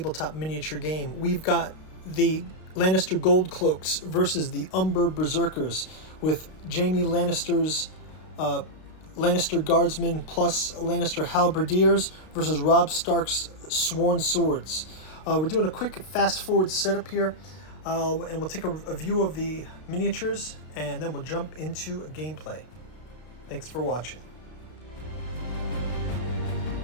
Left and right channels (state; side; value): late; right; 32 ms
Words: miniature game. We've got the Lannister Gold Cloaks versus the Umber Berserkers with Jaime Lannister's Lannister Guardsmen plus Lannister Halberdiers versus Robb Stark's Sworn Swords. We're doing a quick fast-forward setup here, and we'll take a view of the miniatures, and then we'll jump into gameplay. Thanks for watching.